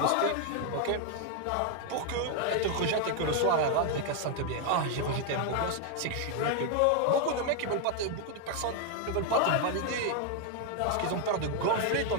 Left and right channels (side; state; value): both; different; correlation 0.00